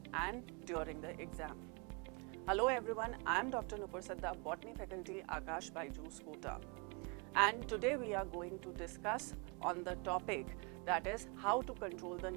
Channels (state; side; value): quieter; left; 31.9 dB